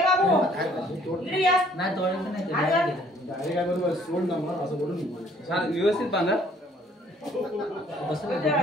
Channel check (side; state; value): both; normal; correlation 0.60